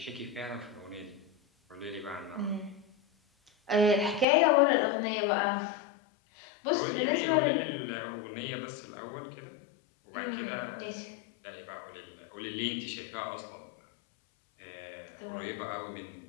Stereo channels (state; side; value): drops out; right; at 4.2 s